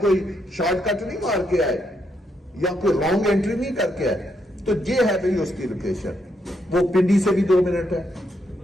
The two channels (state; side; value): normal; both; correlation 0.78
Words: شارٹ کٹ نہیں مار کے آئے یا کوئی رانگ انٹری نہیں کر کے آئے. تو یہ ہے بھئی اس کی لوکیشن. وہ پنڈی سے بھی 2 منٹ ہے،